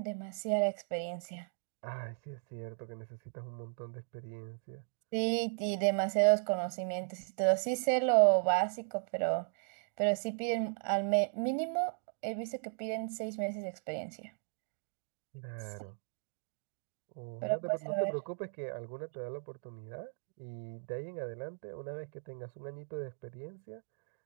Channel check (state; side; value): silent; left; digital silence